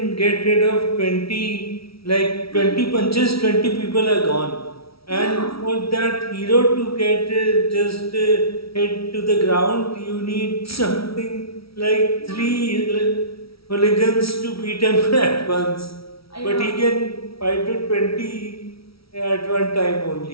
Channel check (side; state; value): right; late; 0.75 ms